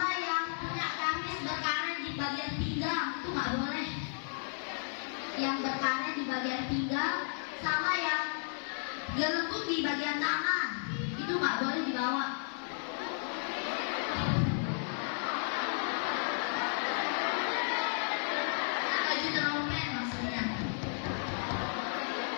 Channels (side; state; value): right; silent; 55 dB below the other